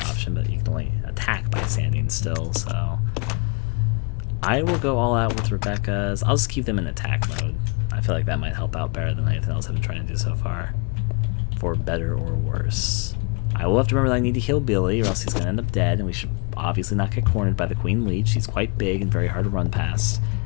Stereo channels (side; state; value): right; quieter; 32.7 dB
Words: option, but you can only attack by standing still, so I will go all out with Rebecca's. I'll just keep them in attack mode. I feel like that might help out better than anything else I've been trying to do so far, for better or worse. I will have to remember that I need to heal Billy, or else he's going to end up dead, and we should obviously not get cornered by the Queen Leech. She's quite big and very hard to run past,